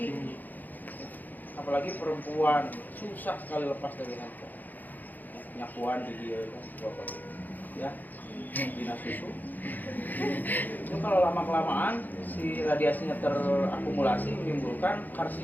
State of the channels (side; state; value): right; late; 0.084 ms